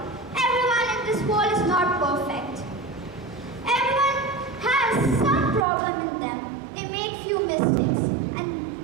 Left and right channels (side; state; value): left; drops out; at 5.7 s